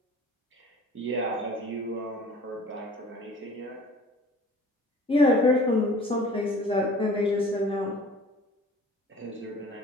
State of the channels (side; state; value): both; normal; correlation 0.46